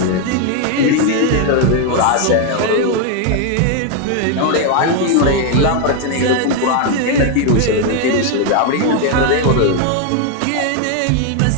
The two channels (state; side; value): different; both; correlation 0.01